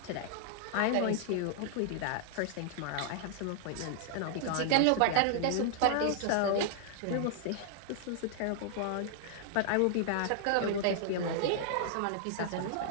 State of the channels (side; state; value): both; different; correlation -0.01